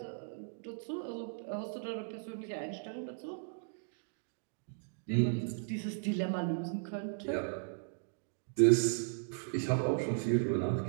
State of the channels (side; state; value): left; silent; digital silence